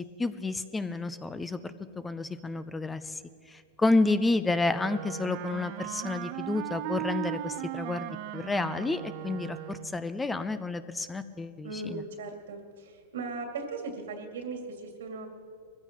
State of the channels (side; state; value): both; normal; correlation 0.76